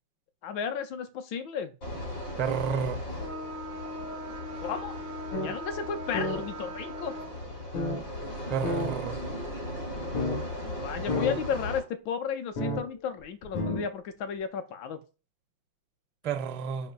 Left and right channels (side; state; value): right; late; 5.7 ms